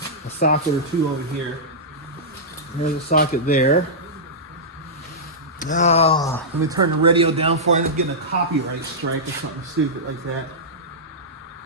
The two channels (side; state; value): both; normal; correlation -0.13